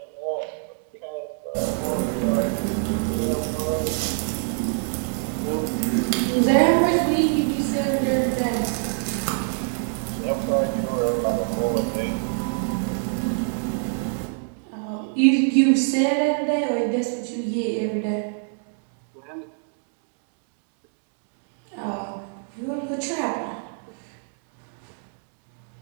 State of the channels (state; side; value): silent; left; 58 dB below the other